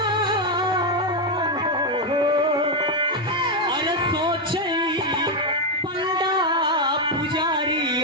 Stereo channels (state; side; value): normal; both; correlation 0.04